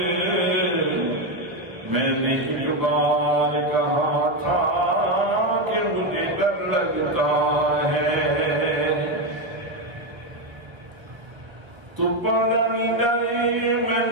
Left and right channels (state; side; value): late; left; 1.2 ms